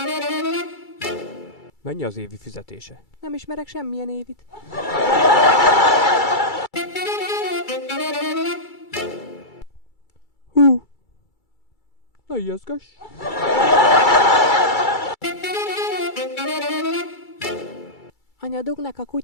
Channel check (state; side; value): late; right; 2.3 ms